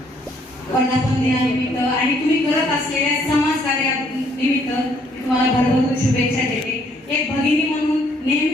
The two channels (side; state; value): both; normal; correlation 0.66